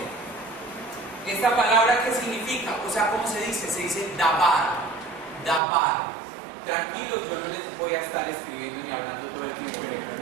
Esta palabra, ¿qué significa? O sea, ¿cómo se dice? Se dice dabar. Dabar. Tranquilos, yo no les voy a estar escribiendo ni hablando todo el tiempo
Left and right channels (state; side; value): drops out; left; at 5.6 s